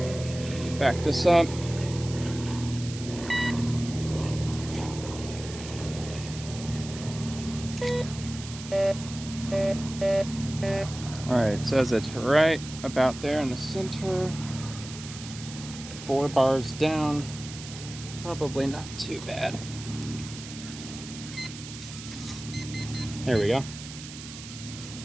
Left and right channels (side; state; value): right; noise; hiss, 13 dB below the sound